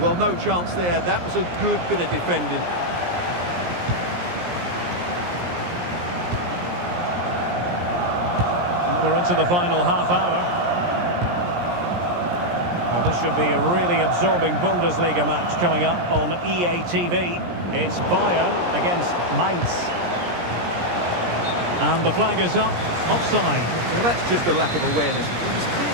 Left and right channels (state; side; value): late; left; 17 ms